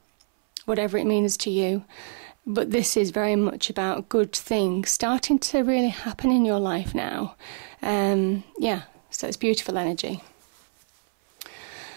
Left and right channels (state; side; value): silent; left; 59 dB below the other